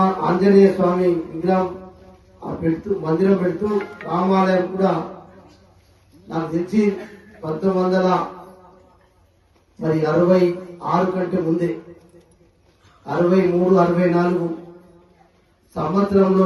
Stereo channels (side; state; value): both; identical; correlation 1.00